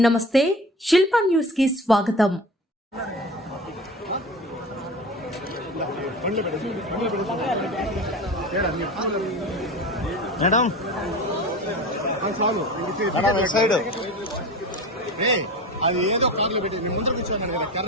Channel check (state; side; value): normal; both; correlation 0.33